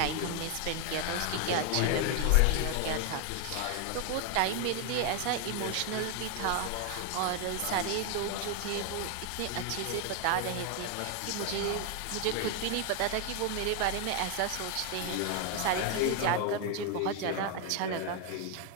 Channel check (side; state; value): both; different; correlation 0.01